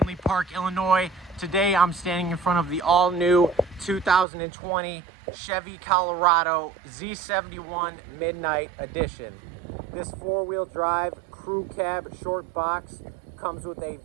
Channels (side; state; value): left; drops out; at 4.2 s